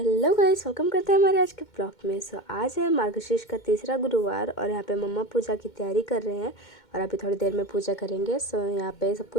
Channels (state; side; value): late; right; 2.2 ms